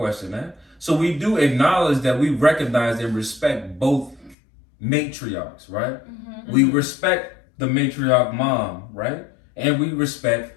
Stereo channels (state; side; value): drops out; right; at 4.4 s